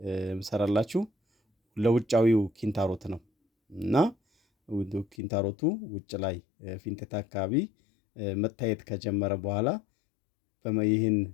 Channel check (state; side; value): drops out; right; at 5.2 s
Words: የምሰራላችሁ ለውጫዊው ኪንታሮት ነው እና ኪንታሮቱ ውጭ ላይ ፊንጤጣ አካባቢ መታየት ከጀመረ በኋላ ይህን